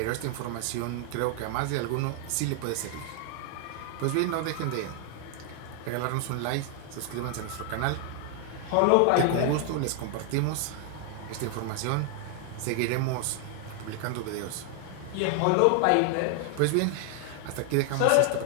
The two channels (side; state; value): both; different; correlation 0.00